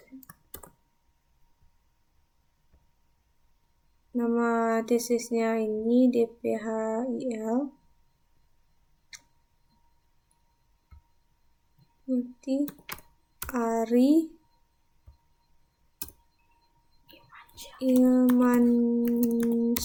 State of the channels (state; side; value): identical; both; correlation 1.00